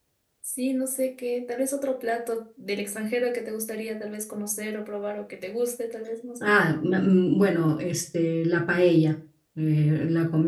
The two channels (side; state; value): both; identical; correlation 1.00